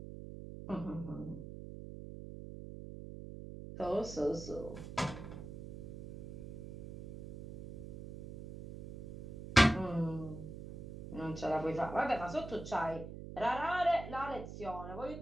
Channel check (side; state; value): right; noise; hum, 10 dB below the sound